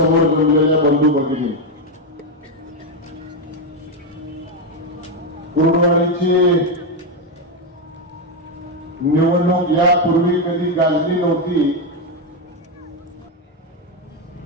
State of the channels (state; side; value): normal; both; correlation 0.06